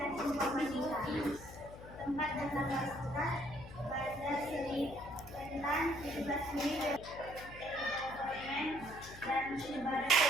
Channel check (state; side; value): noise; left; hum, 15 dB below the sound